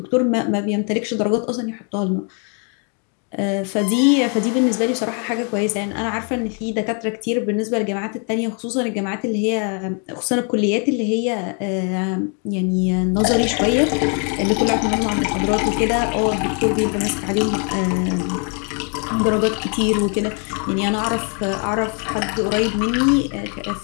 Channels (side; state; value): right; quieter; 38.9 dB